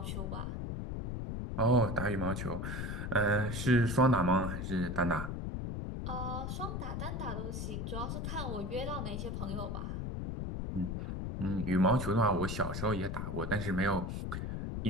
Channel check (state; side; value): noise; left; rumble, 3 dB below the sound